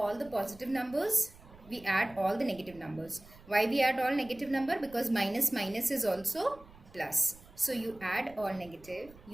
the positive numbers. We add all the negative numbers. Why we add all negative number? Because minus minus is also plus. So you add all negative,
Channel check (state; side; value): noise; right; rumble, 22 dB below the sound